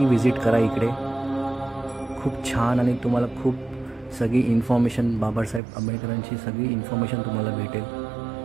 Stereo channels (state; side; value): drops out; left; at 5.6 s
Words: विजिट करा इकडे। खूप छान आणि तुम्हाला खूप सगळी इन्फॉर्मेशन, बाबासाहेब आंबेडकरांची सगळी इन्फॉर्मेशन तुम्हाला भेटेल।